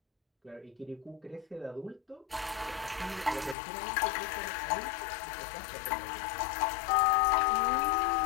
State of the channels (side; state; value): right; drops out; at 3.6 s